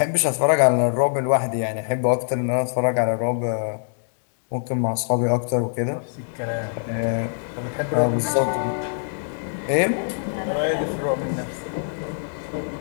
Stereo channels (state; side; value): silent; right; digital silence